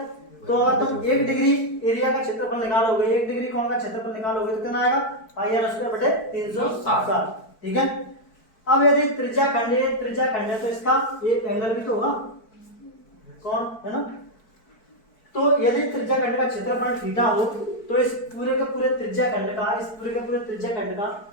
तो अगर तुम 1 डिग्री एरिया का क्षेत्रफल निकालोगे, 1 डिग्री कोण का क्षेत्रफल निकालोगे तो कितना आएगा, पाई आर स्क्वायर बटे 360। ठीक है। अब यदि त्रिज्या खंड है तो इसका ये एंगल भी तो होगा, कौन है ना। तो यदि त्रिज्या खंड का क्षेत्रफल थीटा हो तो इस पूरे के पूरे त्रिज्या खंड का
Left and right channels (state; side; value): late; right; 4.6 ms